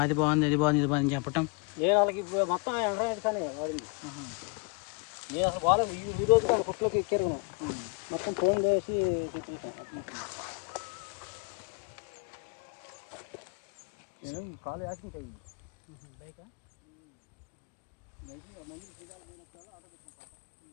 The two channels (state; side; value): quieter; right; 33.0 dB